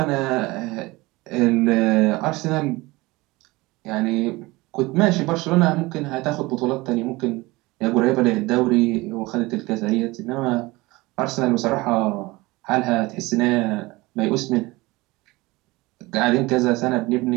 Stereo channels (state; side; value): quieter; left; 21.7 dB